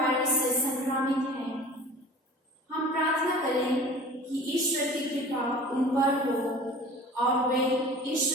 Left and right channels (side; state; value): both; normal; correlation 0.42